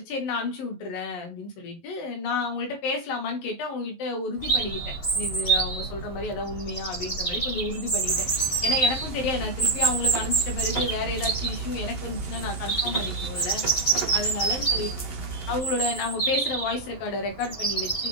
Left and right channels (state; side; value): late; right; 11 ms